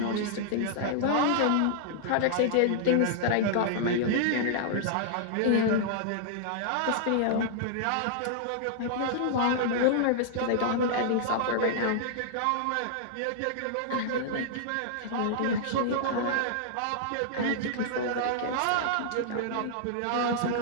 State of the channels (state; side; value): different; both; correlation -0.01